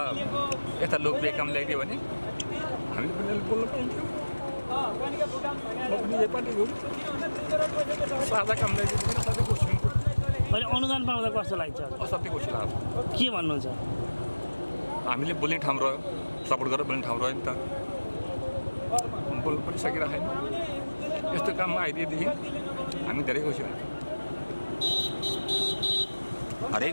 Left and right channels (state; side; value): inverted; both; correlation -1.00